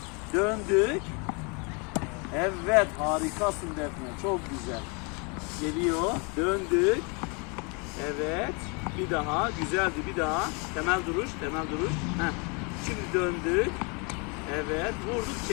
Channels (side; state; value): right; quieter; 32.9 dB